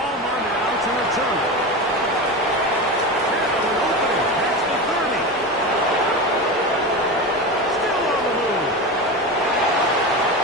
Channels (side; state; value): both; normal; correlation 0.24